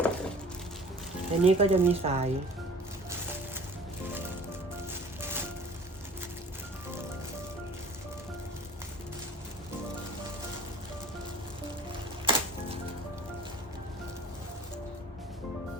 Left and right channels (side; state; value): both; normal; correlation 0.45